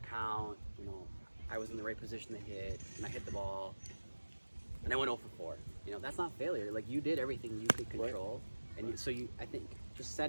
count, you know, I was in the right position to hit, and I hit the ball, and I went 0 for 4. You know, that's not failure. Like you did everything you could control, And I think just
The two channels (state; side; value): inverted; both; correlation -1.00